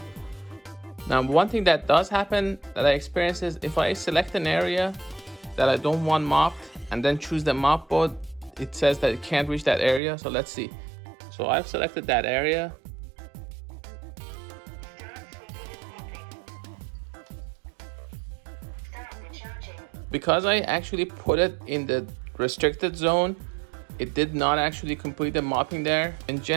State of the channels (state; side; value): drops out; left; at 10.0 s